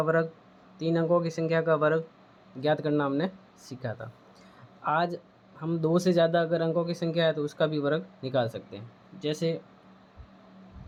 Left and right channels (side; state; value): both; identical; correlation 1.00